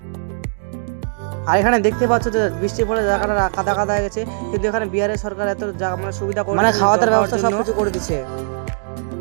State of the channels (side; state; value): left; silent; digital silence